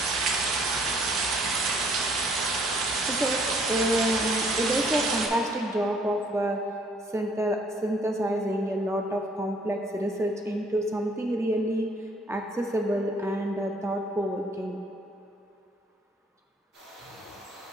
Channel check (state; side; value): normal; both; correlation 0.62